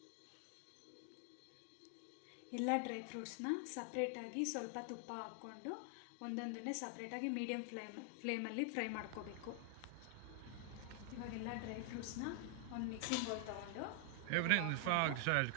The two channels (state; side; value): different; both; correlation 0.00